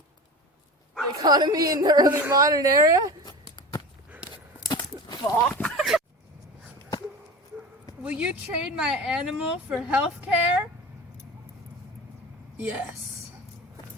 economy in the early modern era? Fuck. Will you trade my animal for health care? Yes.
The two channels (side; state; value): both; normal; correlation 0.32